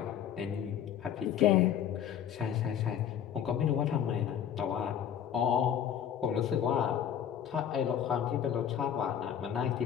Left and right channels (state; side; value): quieter; right; 9.2 dB